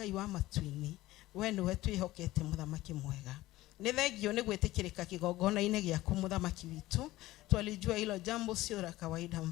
wa matu-inĩ. We nĩwe twĩhokete mũthamaki mwega. Nĩ thengio nĩ gwĩtĩkĩrĩka kĩgongona-inĩ gĩaku mũthamaki witũ. Twalijua hilo jambo sio la kawaida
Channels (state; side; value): quieter; right; 17.2 dB